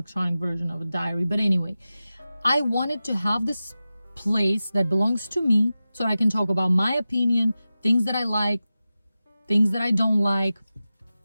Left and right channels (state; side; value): inverted; both; correlation -0.94